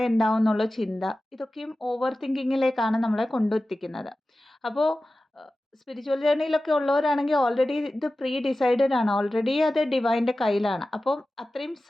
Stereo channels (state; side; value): normal; both; correlation 0.95